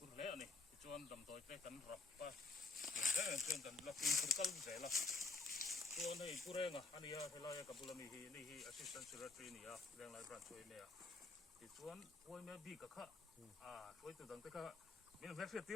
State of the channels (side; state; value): right; quieter; 3.8 dB